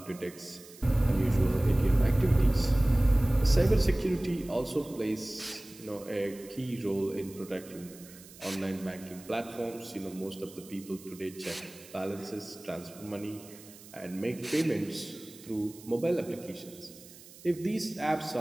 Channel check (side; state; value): right; noise; hiss, 20 dB below the sound